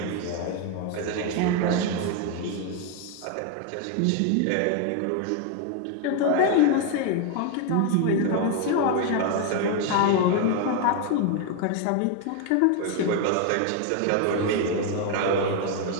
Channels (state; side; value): different; both; correlation 0.01